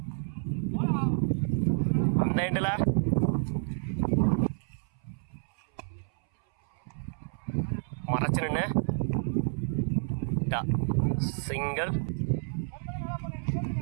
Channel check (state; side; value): silent; left; 58 dB below the other